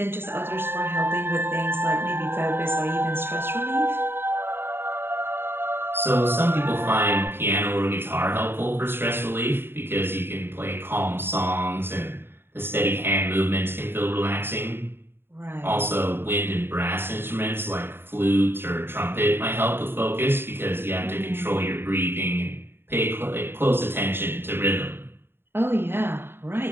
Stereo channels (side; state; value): left; late; 0.11 ms